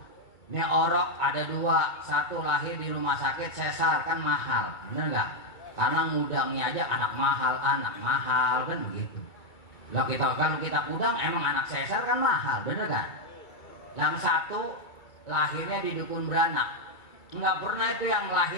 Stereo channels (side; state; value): right; late; 2.2 ms